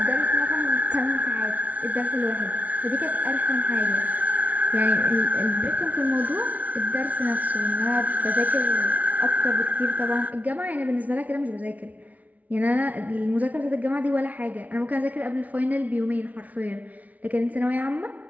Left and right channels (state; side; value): late; left; 0.072 ms